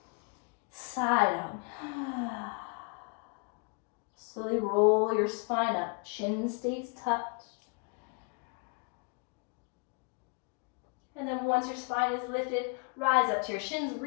Side out. Slowly roll your spine up. Chin stays tucked. And then once your spine is lifted, rise up to your shins,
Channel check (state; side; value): quieter; right; 34.6 dB